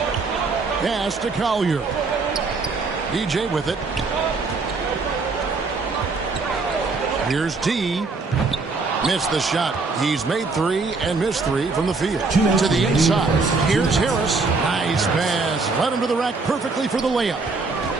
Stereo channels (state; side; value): quieter; left; 4.0 dB